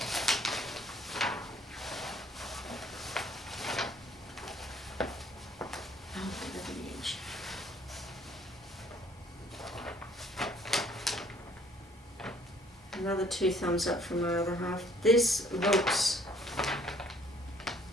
Another 2 thumbs up from my other half. This looks,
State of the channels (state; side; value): normal; both; correlation 0.60